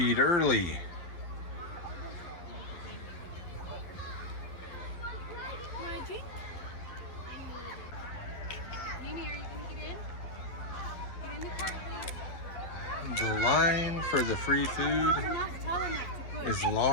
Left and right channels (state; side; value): late; right; 11 ms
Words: early. The line for the free food is